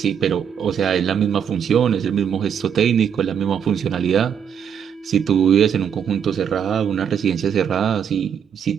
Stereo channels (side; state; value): left; quieter; 8.0 dB